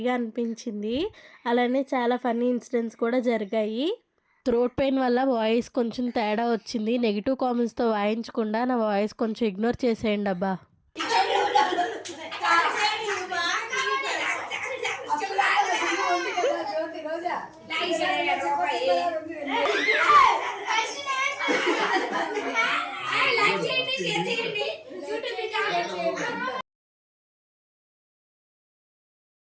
అనిపించింది. అలానే చాలా ఫన్నీ ఇన్సిడెంట్స్ కూడా జరిగాయి. థ్రోట్ పెయిన్ వల్ల వాయిస్ కొంచెం తేడా వచ్చింది. నెగిటివ్ కామెంట్స్తో వాయించకుండా నా వాయిస్ కొంచెం ఇగ్నోర్ చేసేయండి అబ్బా.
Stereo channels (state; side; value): identical; both; correlation 1.00